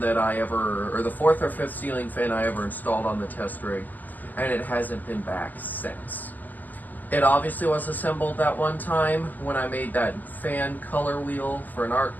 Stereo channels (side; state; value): right; late; 0.084 ms